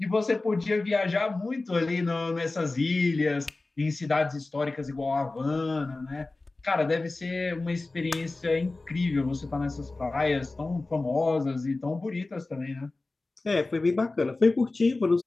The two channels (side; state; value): right; quieter; 3.2 dB